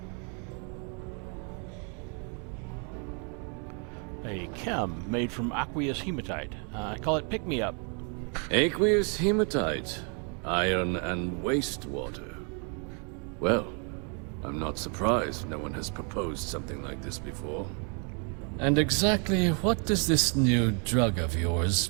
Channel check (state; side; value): quieter; left; 37.7 dB